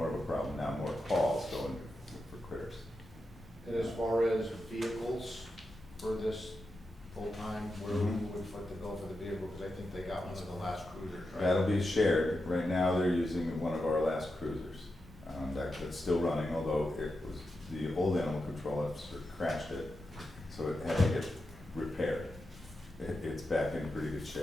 of a problem now, more calls going for critters. And as far as vehicles for this full-time, where we would foot the bill for the vehicle, because I think they got one of the last cruisers, right? That'll be shared. Right now, they're using one of our last cruisers. That's still running, although it was, the old animal control officer crashed it, so it had to get repaired. It's back in pretty good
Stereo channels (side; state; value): both; normal; correlation 0.89